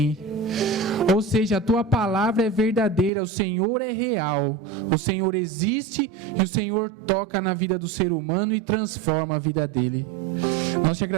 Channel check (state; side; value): drops out; left; at 3.1 s